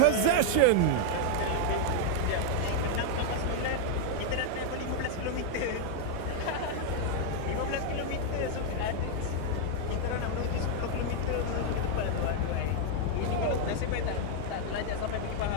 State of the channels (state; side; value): different; both; correlation 0.00